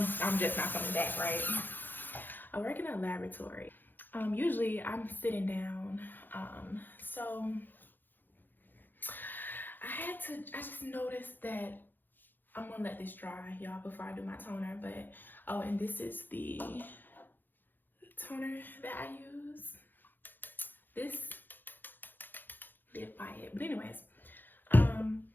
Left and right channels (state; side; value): late; right; 0.090 ms